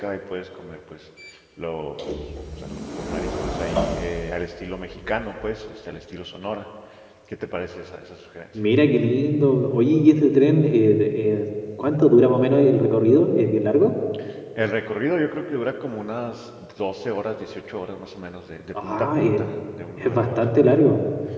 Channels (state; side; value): identical; both; correlation 1.00